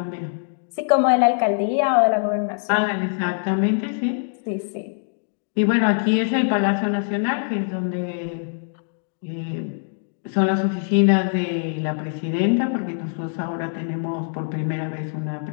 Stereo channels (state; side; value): silent; right; digital silence